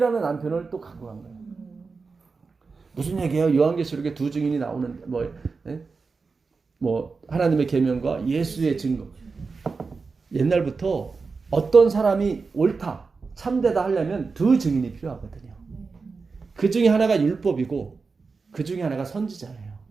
남편을 또 갖고 간 거예요. 무슨 얘기예요? 요한계시록에 두 증인이 나오는 뭐 하나님의 계명과 예수의 증거. 옛날부터 어떤 사람이 옳다, 참되다 하려면 두 증인이 필요하거든요. 그 중에 하나가 율법이고 그 중에 하나가 선지자예요.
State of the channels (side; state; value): left; quieter; 4.5 dB